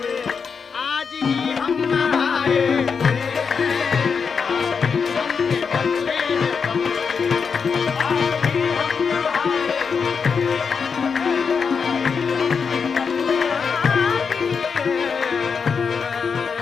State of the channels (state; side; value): quieter; right; 5.8 dB